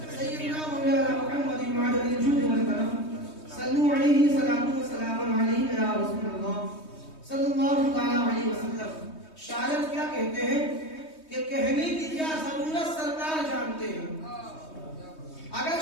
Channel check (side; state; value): right; late; 3.2 ms